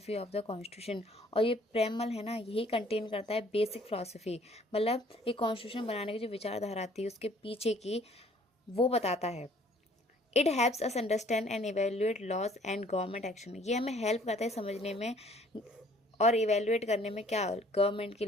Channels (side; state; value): both; normal; correlation 0.58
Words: of the constitution, और ये प्रेमल है ना यही कंटेन करता है बेसिक फिलोसफी, मतलब ये कॉन्स्टिट्यूशन बनाने की जो विचारधारा थी उसके पीछे की वो बताता है। It helps us understand and evaluate laws and government action, ये हमें हेल्प करता है समझने में और इवेल्युएट करने में क्या गवर्नमेंट की